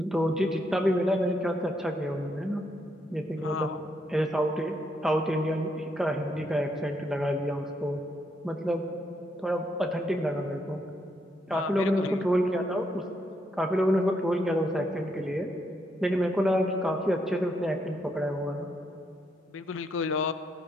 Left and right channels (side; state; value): both; normal; correlation 0.76